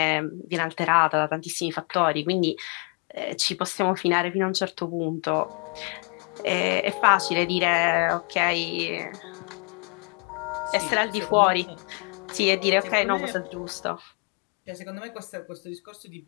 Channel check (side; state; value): right; quieter; 35.6 dB